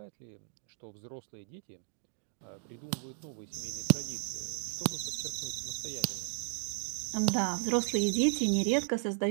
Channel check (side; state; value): left; silent; digital silence